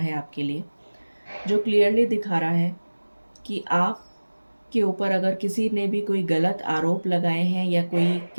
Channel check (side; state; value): both; inverted; correlation -1.00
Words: आपके लिए, जो क्लियरली दिखा रहा है कि आप के ऊपर अगर किसी ने भी कोई गलत आरोप लगाए हैं या कोई